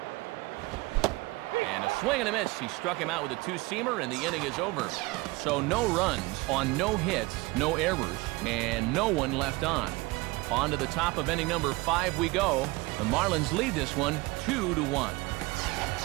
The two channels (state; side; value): quieter; left; 22.6 dB